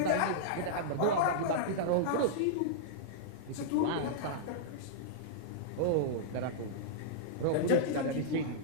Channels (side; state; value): both; different; correlation -0.02